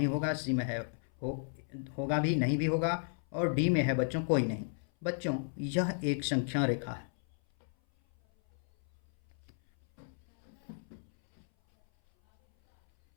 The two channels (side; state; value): right; silent; 55 dB below the other